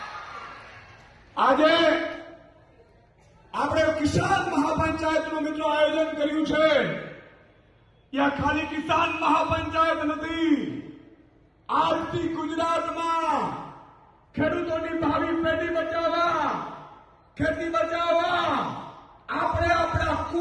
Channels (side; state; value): both; identical; correlation 1.00